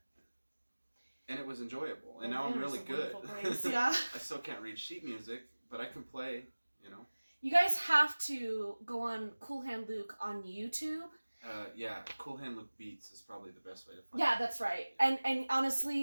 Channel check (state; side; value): inverted; both; correlation -1.00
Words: And it was enjoyable. And now I'm really good. Yeah. I still can't read sheet music, but I can play, You guys have to go on Cool Hand Luke on YouTube. Yeah, Cool Hand Luke Beats is probably the best way to find it. Yeah, that's right. And